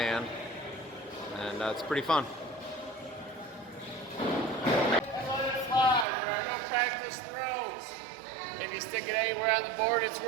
and it's pretty fun. Practice throws. If you stick it anywhere on the board, it's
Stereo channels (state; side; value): drops out; left; at 6.1 s